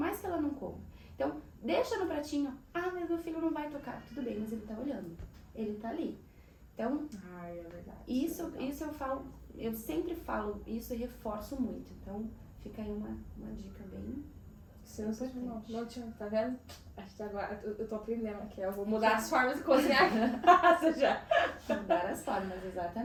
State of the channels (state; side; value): identical; both; correlation 1.00